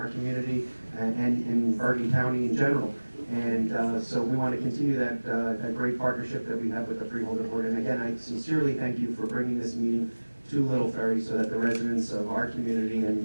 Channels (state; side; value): inverted; both; correlation -1.00